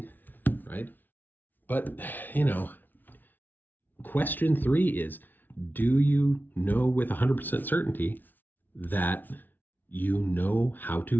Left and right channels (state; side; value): late; right; 0.087 ms